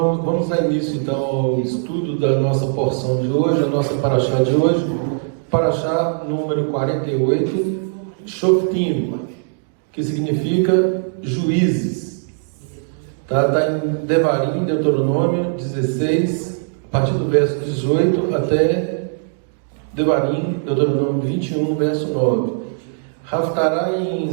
dar início então ao estudo da nossa porção de hoje, a nossa paraxá de hoje, paraxá número 48, Shoftim, que significa juízes. Está em Devarim, Deuteronômio 16, a partir do verso 18 até Devarim, Deuteronômio 21, verso 9. Haftará em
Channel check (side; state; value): left; silent; digital silence